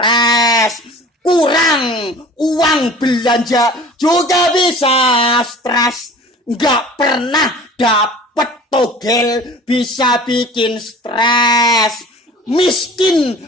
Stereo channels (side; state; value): both; normal; correlation 0.44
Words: Kurang uang belanja juga bisa stres. Nggak pernah dapet togel bisa bikin stres. Miskin